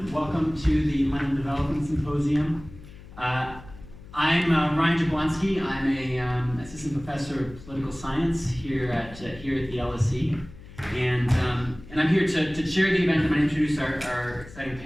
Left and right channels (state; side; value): noise; left; hum, 18 dB below the sound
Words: Welcome to the London Development Symposium. I'm Ryan Jablonski. I'm a assistant professor of political science here at the LSE, and I'm here to chair the event. I'm going to introduce our exciting